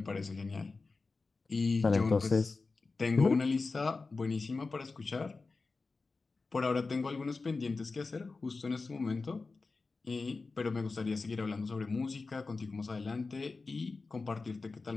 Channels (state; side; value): quieter; right; 4.0 dB